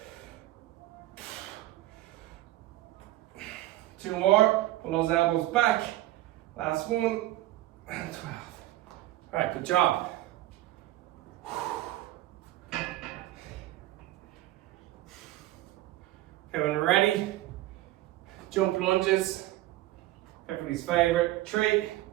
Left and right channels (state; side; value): quieter; left; 16.2 dB